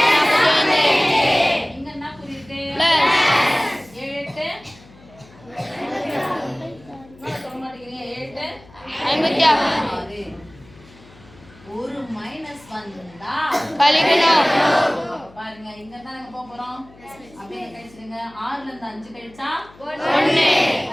இங்க என்ன குறி இருக்கு? 7 8 சொல்ல மாட்டேங்கிறீங்க. 7 56. ஒரு மைனஸ் வந்தா கழிக்கணும். பாருங்க, இங்க தான் நாங்க போக போறோம். அப்படியே கழிச்சிடுங்க. 6ல இருந்து 5 கழிச்சா 1,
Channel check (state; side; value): noise; left; hum, 25 dB below the sound